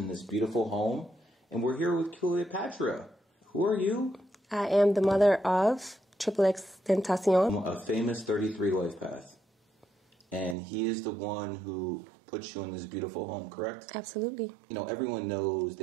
in this beautiful home, and we're here with Cleopatra. Who are you? I am the mother of xxXTentacion's. A famous 33 life path. And he is the one who puts you in this beautiful home, correct? Absolutely. You know, everyone knows,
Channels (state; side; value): drops out; left; at 10.6 s